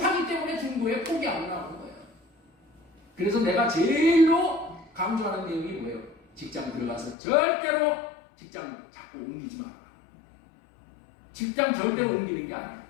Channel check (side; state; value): right; drops out; at 7.2 s